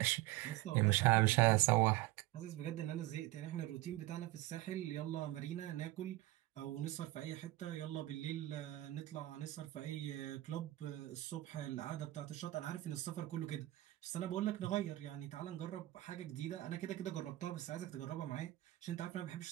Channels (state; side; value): quieter; left; 17.2 dB